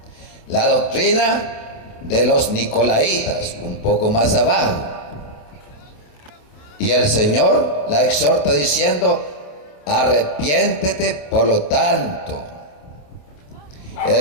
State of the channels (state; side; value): late; right; 27 ms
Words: la doctrina de los Nicolaitas, un poco más abajo. Y el Señor la exhorta diciendo: arrepiéntete por lo tanto.